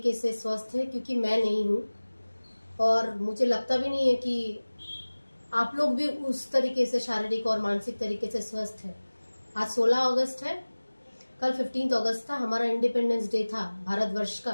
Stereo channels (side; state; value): both; inverted; correlation -1.00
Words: से स्वस्थ हैं, क्योंकि मैं नहीं हूं और मुझे लगता भी नहीं है कि आप लोग भी उस तरीके से शारीरिक और मानसिक तरीके से स्वस्थ हैं। आज 16 अगस्त है, कल 15 अगस्त था, हमारा इंडिपेंडेंस डे था भारतवर्ष